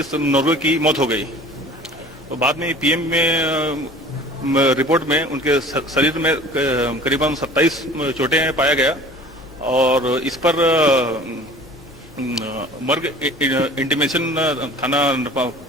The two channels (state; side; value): normal; both; correlation 0.45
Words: नोरगे की मौत हो गई। तो बाद में पीएम में रिपोर्ट में उनके शरीर में करीबन 27 चोटें पाया गया और इस पर मर्ग इंटीमेशन थाना